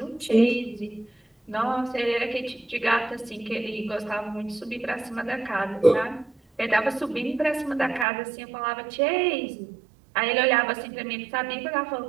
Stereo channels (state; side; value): drops out; left; at 8.1 s